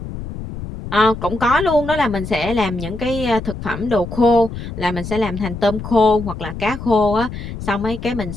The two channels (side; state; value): left; noise; rumble, 9 dB below the sound